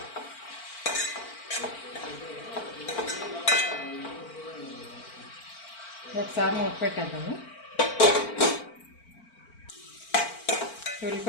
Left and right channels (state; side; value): late; right; 4.4 ms